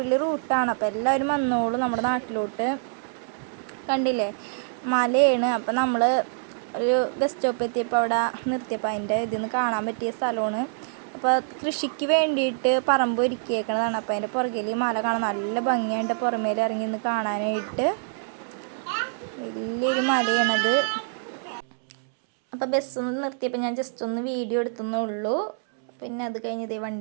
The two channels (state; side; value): silent; left; 61 dB below the other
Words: റൂട്ടാണ്. അപ്പോൾ എല്ലാവരും വന്നോളൂ നമ്മുടെ നാട്ടിലോട്ട്. കണ്ടില്ലേ, മലയാണ്. അപ്പം നമ്മൾ ഒരു ബസ് സ്റ്റോപ്പ് എത്തിയപ്പോൾ അവിടെ നിർത്തിയപ്പോൾ അതിൻ്റെ ഇതിന്ന് കാണാൻ പറ്റിയ സ്ഥലമാണ്. അപ്പോൾ കൃഷിക്ക് വേണ്ടിയിട്ട് പറമ്പ് ഒരുക്കിയേക്കണതാണ്. അപ്പോൾ അതിൻ്റെ പുറകിൽ ഈ മല കാണാൻ നല്ല ഭംഗിയായിട്ട് പുറമേൽ ഇറങ്ങി നിന്ന് കാണാനായിട്ട്. വലിയൊരു മലയാണത്. അപ്പോൾ ബസ് നിർത്തിയപ്പോൾ ഞാൻ ജസ്റ്റ് ഒന്ന് വീഡിയോ എടുത്തേ ഉള്ളൂ. പിന്നെ അത് കഴിഞ്ഞ് ഇതേ